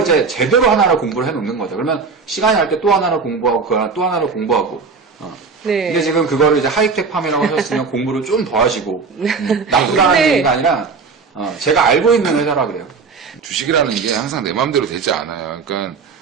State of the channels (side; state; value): left; quieter; 4.9 dB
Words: 이제 제대로 하나를 공부를 해놓는 거죠. 그러면 시간이 날 때 또 하나를 공부하고 그 하나 또 하나를 공부하고. 네. 근데 지금 그거를 이제 하이텍 팜이라고 하셨으면 공부를 좀 더 하시고, 나쁘다는 네. 얘기가 아니라 제가 알고 있는 회사라 그래요. 주식이라는 게 항상 내 마음대로 되지 않아요. 그러니까